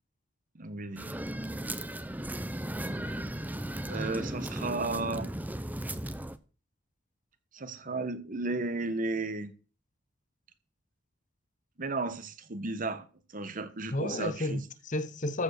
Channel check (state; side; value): normal; both; correlation 0.40